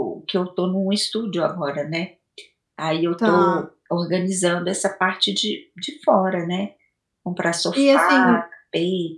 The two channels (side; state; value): both; identical; correlation 1.00